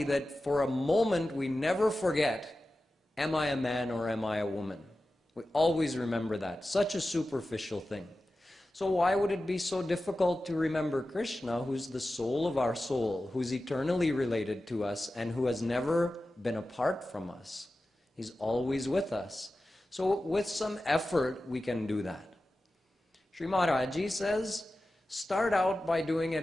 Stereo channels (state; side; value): normal; both; correlation 0.94